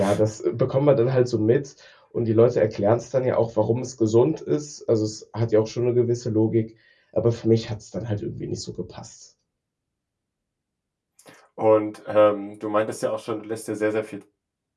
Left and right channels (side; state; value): both; identical; correlation 1.00